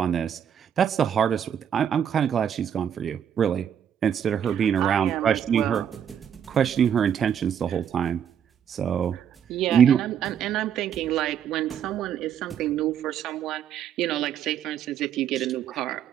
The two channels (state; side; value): quieter; left; 8.8 dB